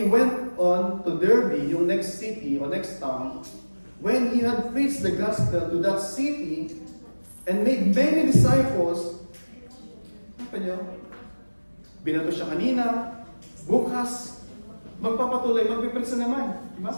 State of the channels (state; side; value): inverted; both; correlation -1.00